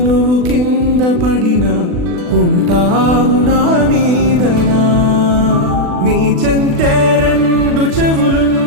నువ్వు కింద పడినా ఉంటావు నా మీదనా. నీ చెంతే రెండు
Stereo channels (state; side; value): late; left; 40 ms